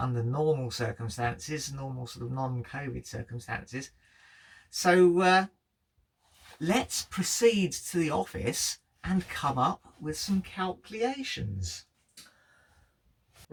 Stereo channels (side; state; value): both; identical; correlation 1.00